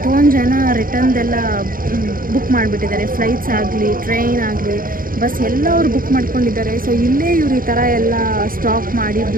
ಜನ ರಿಟರ್ನ್ದೆಲ್ಲ ಬುಕ್ ಮಾಡಿಬಿಟ್ಟಿದ್ದಾರೆ. ಫ್ಲೈಟ್ಸ್ ಆಗಲಿ, ಟ್ರೈನ್ ಆಗಲಿ, ಬಸ್ ಎಲ್ಲ ಅವ್ರು ಬುಕ್ ಮಾಡ್ಕೊಂಡಿದ್ದಾರೆ. ಸೊ ಇಲ್ಲೇ ಇವ್ರು ಈ ಥರ ಎಲ್ಲ ಸ್ಟಾಪ್ ಮಾಡಿ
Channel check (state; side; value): late; left; 0.41 ms